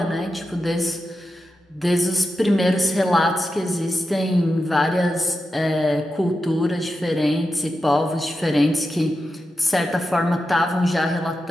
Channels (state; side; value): normal; both; correlation 0.90